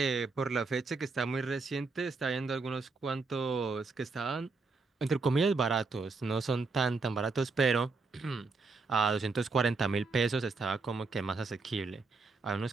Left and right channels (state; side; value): quieter; left; 4.1 dB